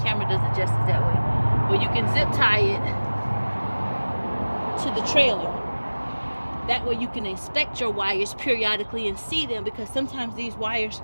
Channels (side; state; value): both; inverted; correlation -1.00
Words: camera does it justice that way, but you can zip tie it to the trailer. That way you can inspect your wires periodically and see them, because sometimes these wires,